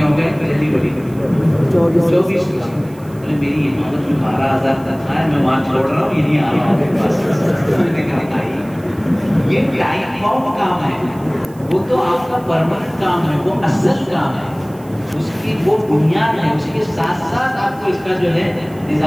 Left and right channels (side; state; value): right; noise; hiss, 26 dB below the sound